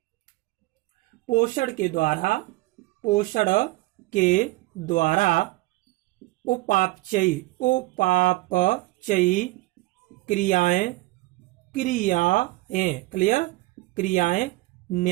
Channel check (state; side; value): quieter; left; 20.3 dB